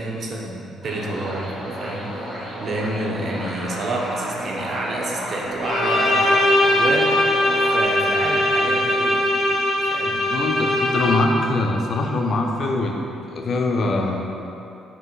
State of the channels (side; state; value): both; normal; correlation 0.75